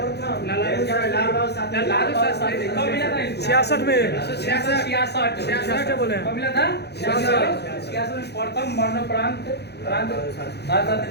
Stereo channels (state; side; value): late; right; 0.48 ms